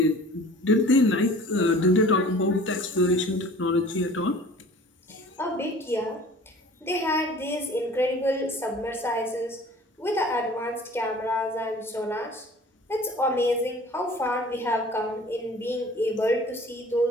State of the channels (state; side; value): normal; both; correlation 0.46